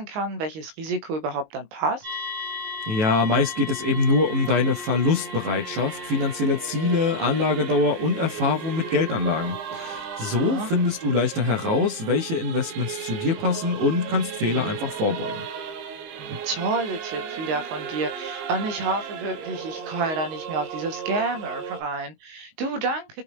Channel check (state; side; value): late; left; 18 ms